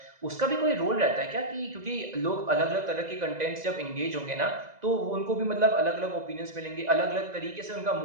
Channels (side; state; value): left; late; 2.0 ms